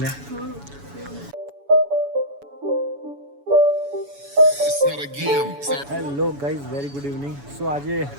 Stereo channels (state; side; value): late; left; 7.0 ms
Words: Hello guys, very good evening. So આજે